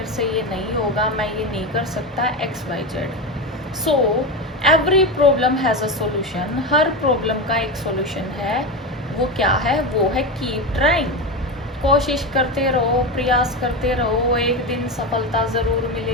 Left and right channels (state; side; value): normal; both; correlation 0.18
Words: से ये नहीं होगा, मैं ये नहीं कर सकता, XYZ। So every problem has a solution. Her problem का एक सॉल्यूशन है। वो क्या है? वो है कीप ट्राइंग। कोशिश करते रहो, प्रयास करते रहो, एक दिन सफलता ज़रूर